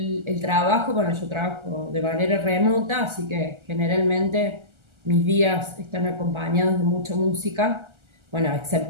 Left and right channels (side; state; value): left; late; 1.3 ms